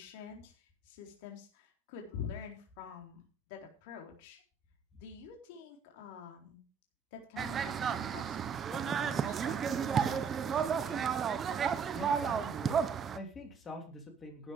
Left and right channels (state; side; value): quieter; left; 5.8 dB